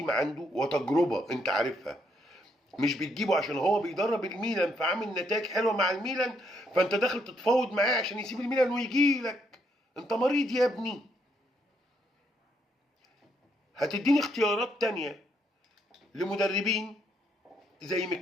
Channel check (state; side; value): normal; both; correlation 0.74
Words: عنده وتجربه انت عارفها، مش بتجيبه عشان هو بيدرب الميلان فعامل نتائج حلوه مع الميلان فانت داخل تتفاوض معاه عشان يسيب الميلان ويجي لك. انت مريض يا ابني. هتديني اختيارات تانية لمدربين زي